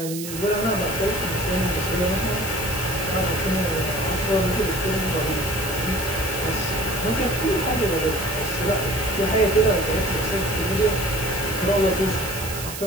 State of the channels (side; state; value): right; noise; hiss, 9 dB below the sound